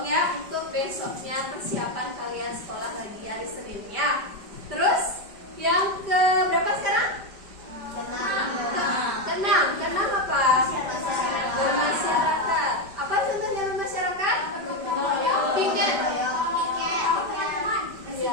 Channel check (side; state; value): left; late; 5.1 ms